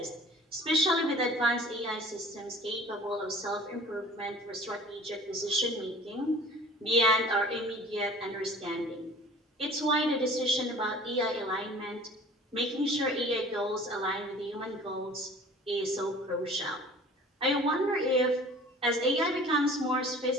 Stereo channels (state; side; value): normal; both; correlation 0.46